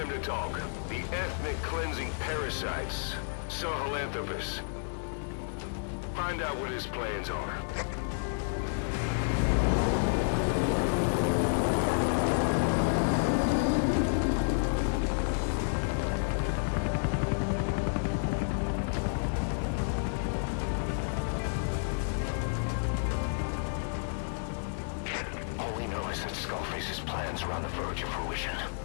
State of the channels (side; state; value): right; silent; digital silence